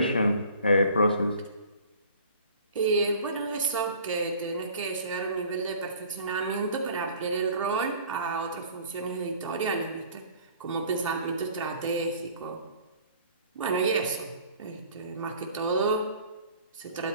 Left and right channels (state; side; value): inverted; both; correlation -0.49